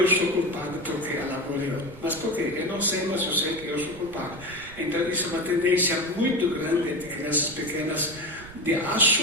sou culpado porque ela morreu. Mas por quê? Eu não sei, mas eu sei que eu sou culpado. Então isso é uma tendência muito grande de crianças pequenas de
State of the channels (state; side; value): noise; right; rumble, 17 dB below the sound